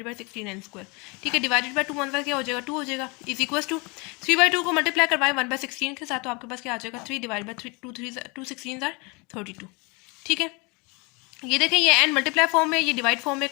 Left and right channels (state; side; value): quieter; right; 28.9 dB